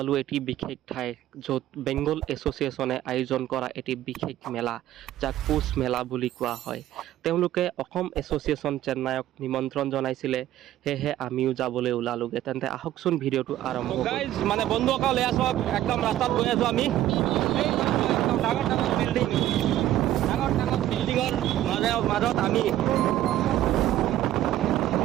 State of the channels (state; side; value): quieter; left; 13.3 dB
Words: এটি বিশেষ ঠাই য'ত বেংগল এছ'চিয়েশ্যনে আয়োজন কৰা এটি বিশেষ মেলা যাক পুছ মেলা বুলি কোৱা হয় তেওঁলোকে অসম এছ'চিয়েশ্যন চেন্নাইক নিমন্ত্ৰণ জনাইছিলে হেহে আমিও যাবলৈ ওলালোগে তেন্তে আহকচোন ভিডিঅ'টো আৰম্ভ কৰোঁ গাইজ মানে বন্ধুসকল এয়া সব একদম ৰাস্তাত গৈ আছো আমি এই একদম ডাঙৰ ডাঙৰ বিল্ডিঙৰ মাজত আমি